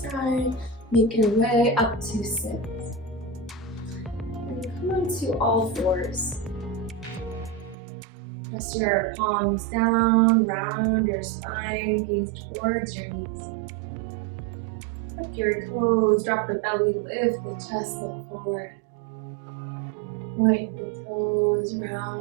Make your way up to sit. And come onto all fours. Press your palms down, round your spine, gaze towards your knees. Tuck your toes, drop the belly, lift the chest, look forward. Point the toes,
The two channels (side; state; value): left; drops out; at 7.8 s